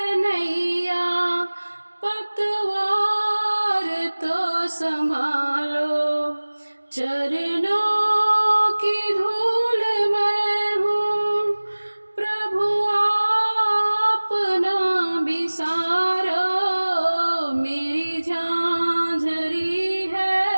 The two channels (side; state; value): both; inverted; correlation -1.00